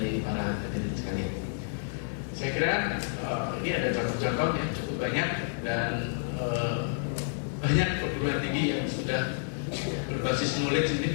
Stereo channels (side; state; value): right; silent; digital silence